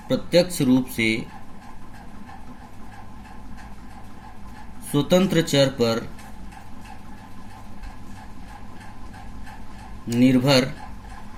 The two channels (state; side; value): identical; both; correlation 1.00